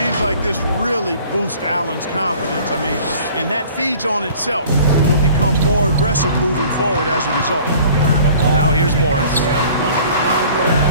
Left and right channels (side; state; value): both; inverted; correlation -0.49